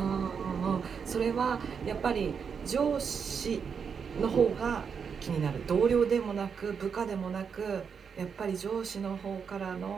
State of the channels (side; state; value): left; quieter; 6.4 dB